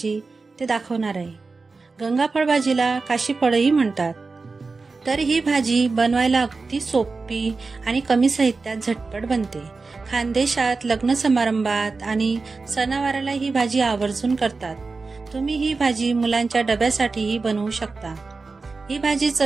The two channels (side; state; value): left; quieter; 4.1 dB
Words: ते दाखवणार आहे। गंगाफळ भाजीला काशीफळही म्हणतात। तर ही भाजी बनवायला अगदी सोपी आणि कमी साहित्यात झटपट बनते। खानदेशात लग्न समारंभात आणि सणावाराला ही भाजी आवर्जून करतात। तुम्ही ही भाजी मुलांच्या डब्यासाठीही बनवू शकता। ही भाजी